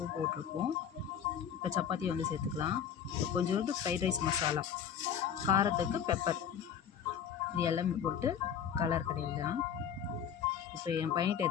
போட்டிருப்போம். இப்போ சப்பாத்தியை வந்து சேர்த்துக்கலாம். இப்போ கொஞ்சோண்டு ஃப்ரைட் ரைஸ் மசாலா, காரத்துக்கு பெப்பர், இது எல்லாமே போட்டு கலர் கடையிலாம். இப்போ என் பையன்கிட்ட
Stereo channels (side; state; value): right; quieter; 8.4 dB